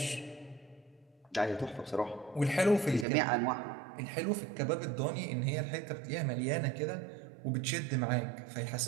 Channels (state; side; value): drops out; left; at 3.1 s